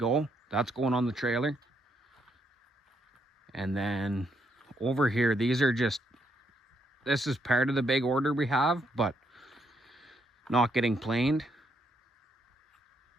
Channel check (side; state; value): both; normal; correlation 0.75